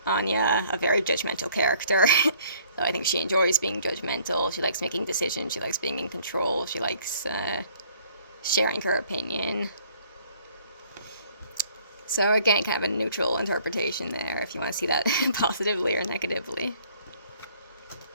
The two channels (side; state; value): both; inverted; correlation -0.59